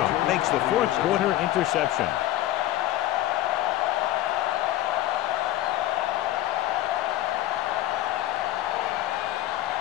makes the fourth quarter interception.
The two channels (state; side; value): quieter; right; 14.6 dB